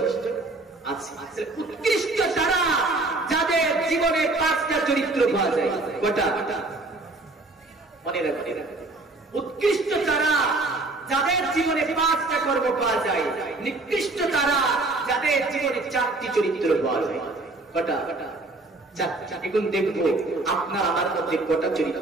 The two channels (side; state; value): left; quieter; 3.1 dB